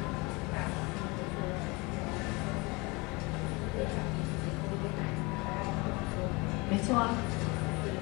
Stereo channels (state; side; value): quieter; right; 26.2 dB